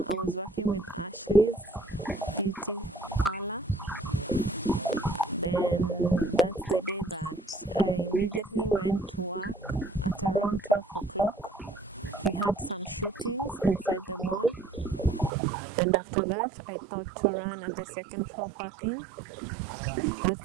was working with Ashley's Beauty Parlor. Then that's the day that I immediately went to work at around 12 o'clock. We had some shootings inside the mall. And after that, I thought to run at the second floor parking.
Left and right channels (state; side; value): drops out; left; at 15.3 s